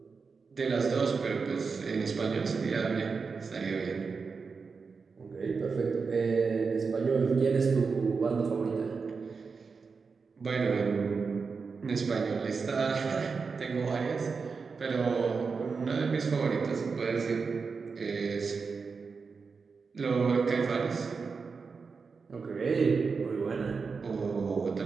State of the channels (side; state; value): left; quieter; 5.0 dB